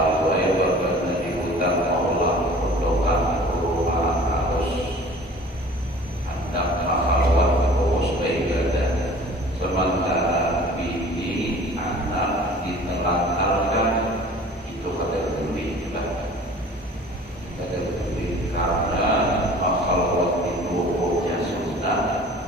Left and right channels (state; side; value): normal; both; correlation 0.46